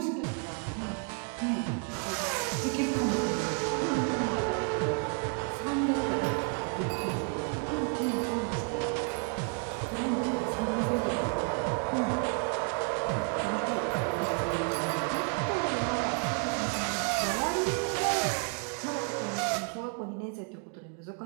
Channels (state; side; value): quieter; left; 39.3 dB